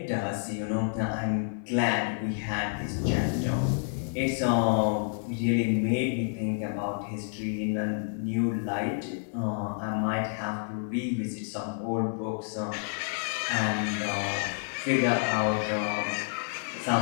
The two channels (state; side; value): silent; right; digital silence